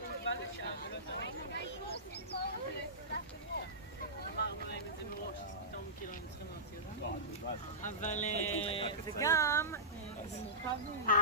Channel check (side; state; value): both; normal; correlation -0.18